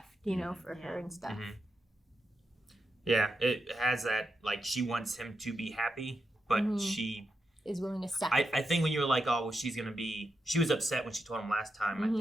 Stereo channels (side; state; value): both; normal; correlation 0.86